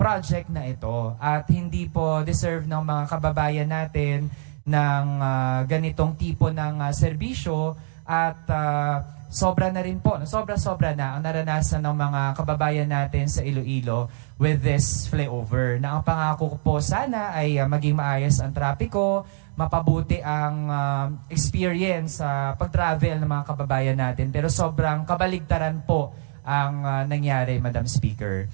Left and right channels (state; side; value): silent; left; digital silence